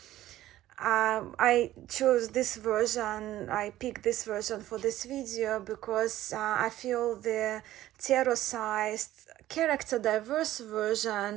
I chose this version, I picked this version for this video because I feel the tarot-sized, character-diverse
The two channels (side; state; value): left; quieter; 14.4 dB